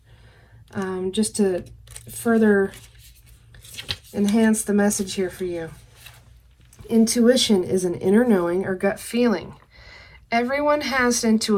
just to further enhance the message here for you. Intuition is an inner knowing or gut feeling. Everyone has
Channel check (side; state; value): both; identical; correlation 1.00